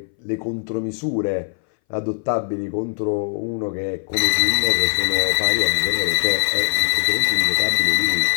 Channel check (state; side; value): silent; right; 62 dB below the other